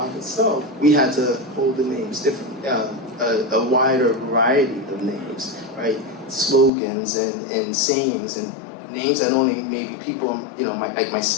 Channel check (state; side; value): drops out; right; at 6.7 s